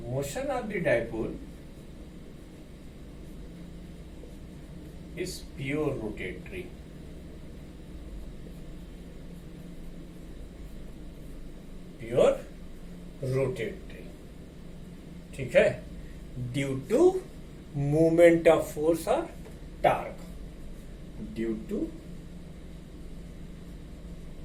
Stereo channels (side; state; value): both; identical; correlation 1.00